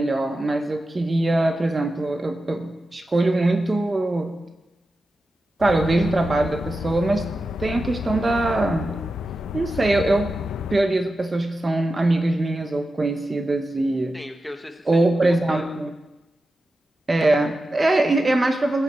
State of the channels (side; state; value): both; normal; correlation 0.92